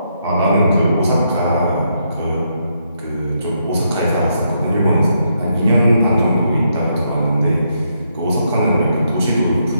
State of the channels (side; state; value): both; inverted; correlation -0.78